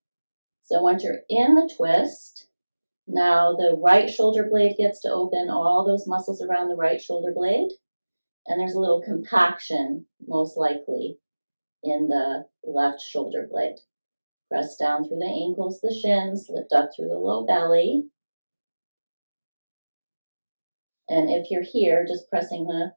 So once you're in the twist, now the right shoulder blade gets to open, all those muscles around the right shoulder blade. And there's a little compaction, most likely, in the left shoulder blade. Press down through the ankles, the shins, lift up through the low belly. And if you're here, just pressing the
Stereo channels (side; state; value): both; inverted; correlation -1.00